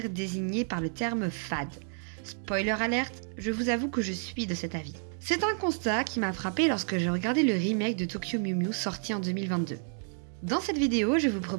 désigné par le terme fade. Spoiler alerte, je vous avoue que je suis de cet avis. C'est un constat qui m'a frappé lorsque j'ai regardé le remake de Tokyo Mew Mew sorti en 2022. Dans cette vidéo, je vous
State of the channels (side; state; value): left; silent; 58 dB below the other